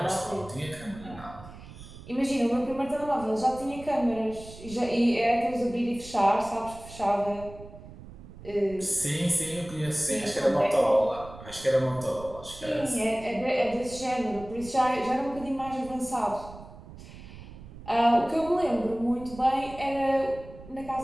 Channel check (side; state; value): right; noise; rumble, 16 dB below the sound